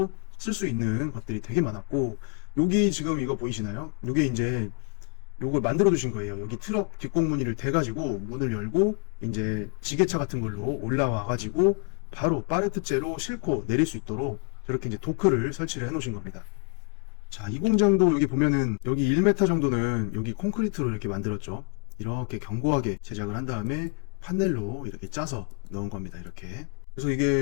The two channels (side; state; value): right; quieter; 35.0 dB